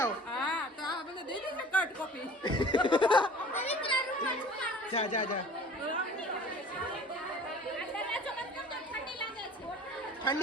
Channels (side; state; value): both; normal; correlation 0.45